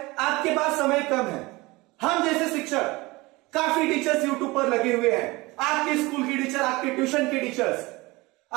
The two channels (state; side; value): quieter; left; 22.4 dB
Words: आपके पास समय कम है। हम जैसे शिक्षक, काफी टीचर्स यूट्यूब पर लगे हुए हैं, आपके स्कूल के टीचर, आपके ट्यूशन के टीचर्स,